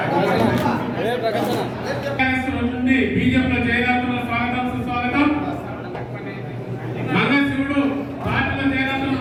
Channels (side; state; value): both; identical; correlation 1.00